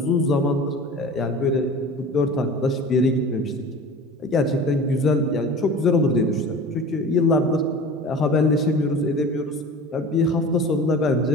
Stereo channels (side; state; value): both; normal; correlation 0.38